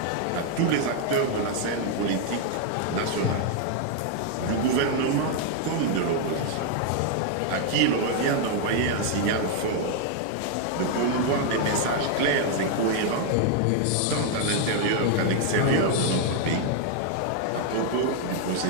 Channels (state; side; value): different; both; correlation 0.00